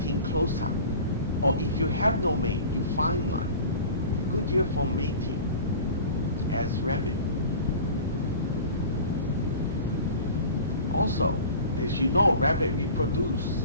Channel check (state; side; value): inverted; both; correlation -0.39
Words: closer. Or if you have no mate, you find one. Good year for mating as rabbit. Also, as you know, rabbit reproduce